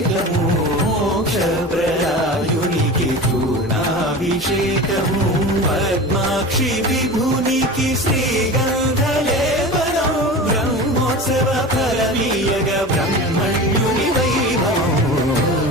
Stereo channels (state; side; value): normal; both; correlation 0.32